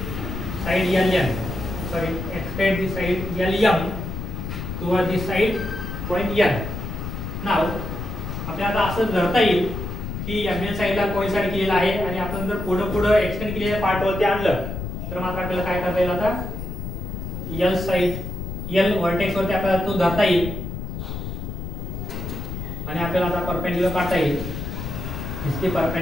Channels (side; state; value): left; noise; rumble, 6 dB below the sound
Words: side LM, sorry, extend the side LM towards the side point N. Now आपल्याला असं धरता येईल की mn साइडला कोइन्साइड केलेला आहे आणि आपण जर पुढे एक्सटेंड केलेल्या पार्ट वरती आणलं तर मात्र आपल्याला काय करता येईल, आता L साइड L व्हर्टेक्स वरती आपल्याला तो धरता येईल आणि आपल्याला आता परपेंडिक्युलर काढता येईल. This the